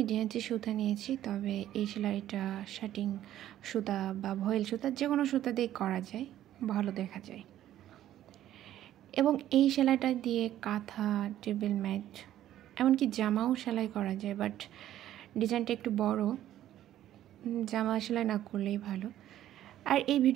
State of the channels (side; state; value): left; quieter; 12.5 dB